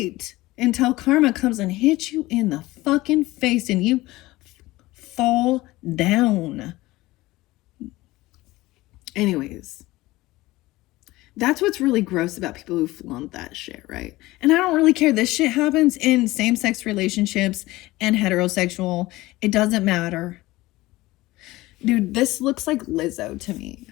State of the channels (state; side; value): quieter; right; 18.9 dB